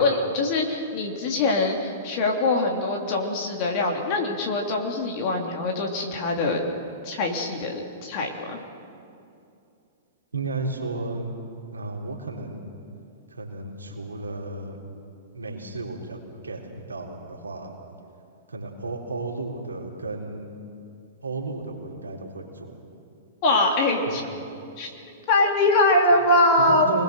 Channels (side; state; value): both; inverted; correlation -0.34